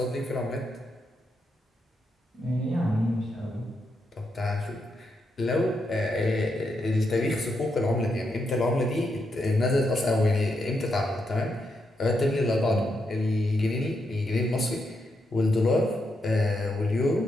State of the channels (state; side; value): normal; both; correlation 0.82